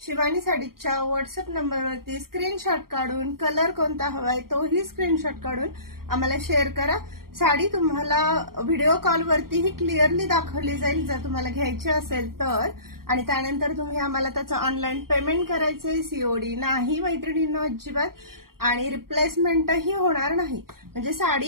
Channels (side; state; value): left; late; 0.93 ms